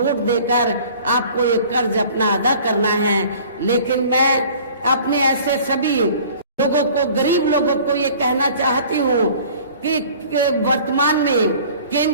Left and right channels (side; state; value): both; inverted; correlation -0.48